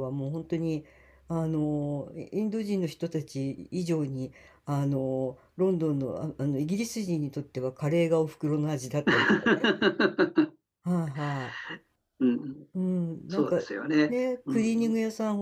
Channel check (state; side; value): identical; both; correlation 1.00